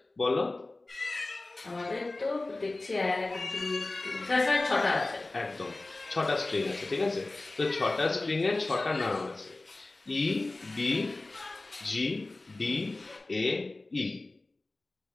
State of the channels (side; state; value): right; quieter; 3.0 dB